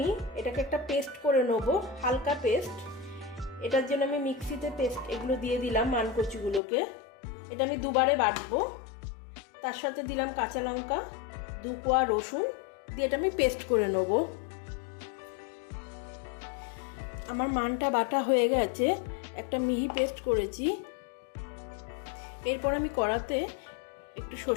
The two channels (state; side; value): drops out; right; at 6.6 s